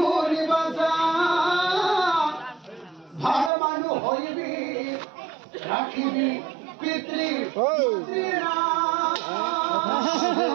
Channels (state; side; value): drops out; left; at 3.5 s